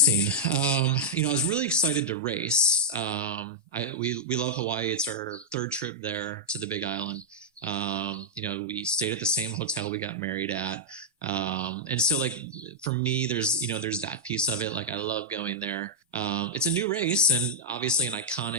I was really excited to race. We love Hawaii. It's our third trip there to the Big Island. We stayed at the same hotel we got married at. And so like, for me, there's that piece of it. Like, I love going there. It's a new race and obviously an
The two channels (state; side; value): normal; both; correlation -0.06